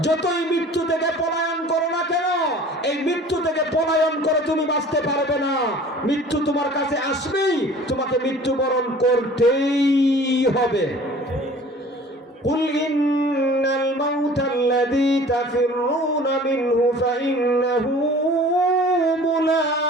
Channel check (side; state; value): both; normal; correlation 0.46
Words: যতই মৃত্যু থেকে পলায়ন করো না কেন, এই মৃত্যু থেকে পলায়ন করে তুমি বাঁচতে পারবে না। মৃত্যু তোমার কাছে আসবেই, তোমাকে মৃত্যুবরণ করতেই হবে। কুল ইন্নাল মাউতাল্লাযী তাফিররুনা মিনহু ফাইন্নাহু